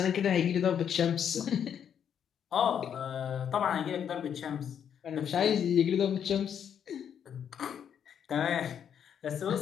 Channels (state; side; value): quieter; right; 8.5 dB